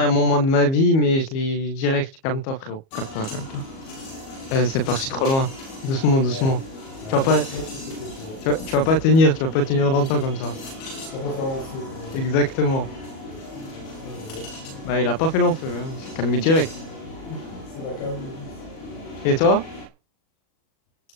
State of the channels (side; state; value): right; late; 37 ms